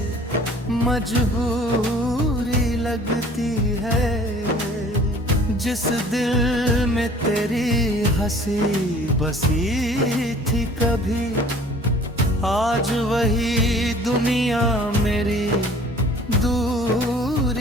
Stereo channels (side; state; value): both; normal; correlation 0.51